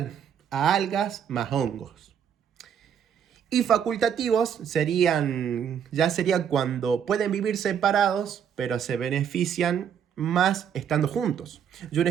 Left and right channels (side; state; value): left; quieter; 8.3 dB